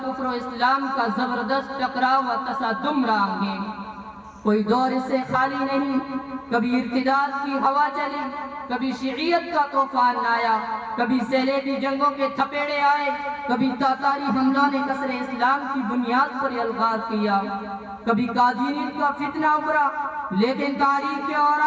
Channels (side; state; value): both; identical; correlation 1.00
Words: کفر و اسلام کا زبردست ٹکراؤ و تصادم رہا ہے. کوئی دور اس سے خالی نہیں. کبھی ارتداد کی ہوا چلی، کبھی شیعیت کا طوفان آیا، کبھی صلیبی جنگوں کے تھپیڑے آئے، کبھی تاتاری حملوں نے کسر اسلام کی بنیاد پر الغار کیا، کبھی قادیانیت کا فتنہ ابھرا. لیکن تاریخ کے